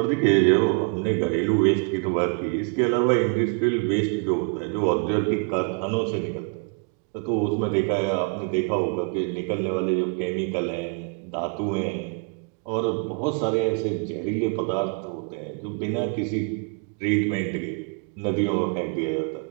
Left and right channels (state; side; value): quieter; left; 36.2 dB